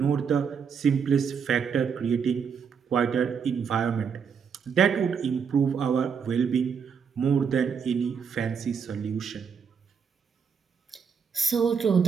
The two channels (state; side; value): quieter; left; 6.6 dB